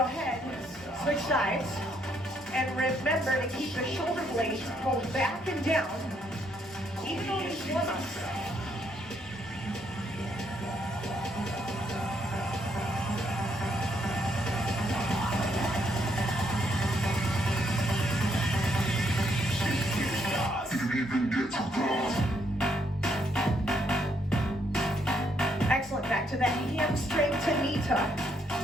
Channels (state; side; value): normal; both; correlation 0.73